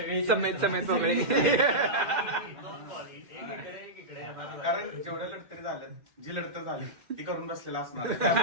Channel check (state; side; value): late; left; 2.1 ms